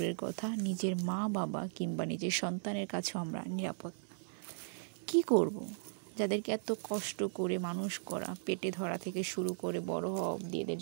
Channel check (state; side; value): silent; left; digital silence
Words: কথা, নিজের মা বাবা কিংবা নিজের সন্তানের কাছেও আমরা নিরাপদ না। কী করব? যাদেরকে এত কষ্ট করে মানুষ করা, পেটে ধরা থেকে শুরু করে বড় হওয়া অবধি এদের